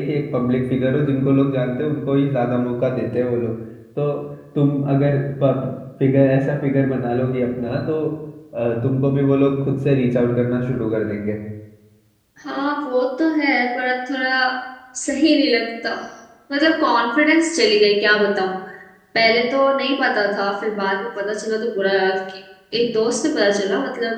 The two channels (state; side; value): identical; both; correlation 1.00